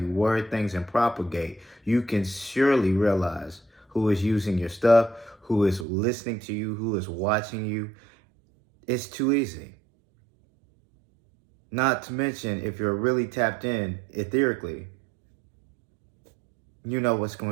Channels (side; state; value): left; drops out; at 5.9 s